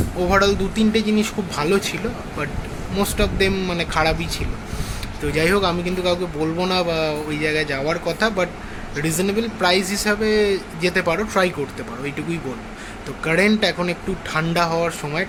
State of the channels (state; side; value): identical; both; correlation 1.00